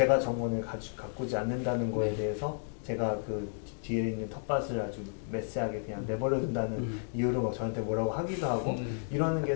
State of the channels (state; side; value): silent; right; digital silence